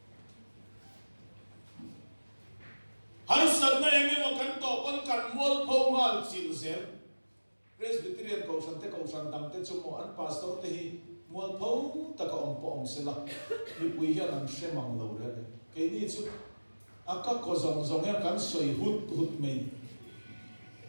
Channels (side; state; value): both; inverted; correlation -1.00